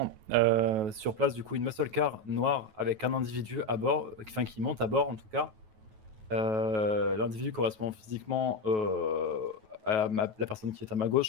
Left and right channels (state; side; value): late; left; 9.3 ms